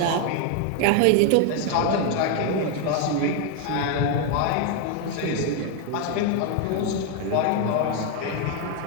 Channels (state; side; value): different; both; correlation 0.01